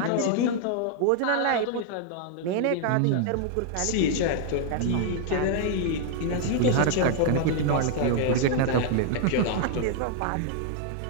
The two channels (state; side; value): different; both; correlation 0.00